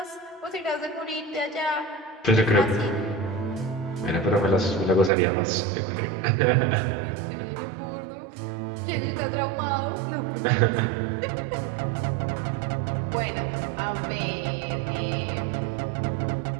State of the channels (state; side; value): drops out; left; at 5.1 s